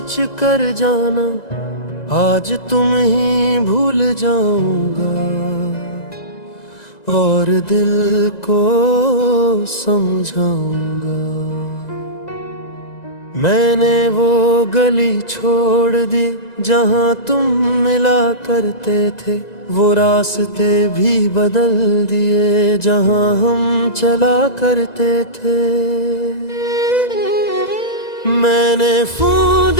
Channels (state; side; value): late; right; 1.9 ms